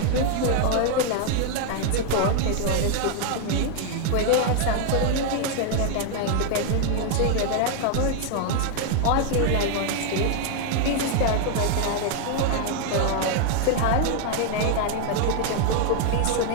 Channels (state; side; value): different; both; correlation 0.00